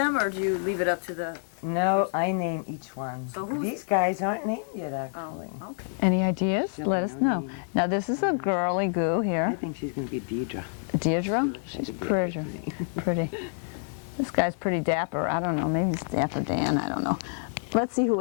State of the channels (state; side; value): silent; right; digital silence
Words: or do you leave it up to the... No, I name each one. So who- These guys aren't named yet, actually. Oh, okay. Any ideas? No, Let us no know. name. Now this is a girly goo I here. think she's going to be Deidre. Deirdre? She's That's a pretty. Beatrice name. Pretty. This guy's pretty dapper. I don't know. Maybe it's Dapper Dan. I don't know. Let's see who